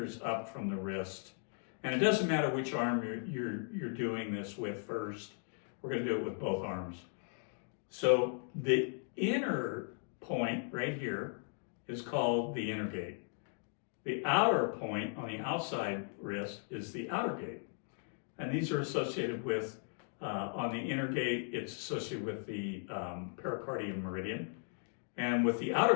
up from the wrist. And it doesn't matter which arm you're doing this with first. We're going to do it with both arms. So the inner point right here is called the inner gate. The outer point on the outside wrist is the outer gate. And these are associated with, on the inner gate, it's associated with the pericardium meridian. And with the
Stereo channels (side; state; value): right; silent; 53 dB below the other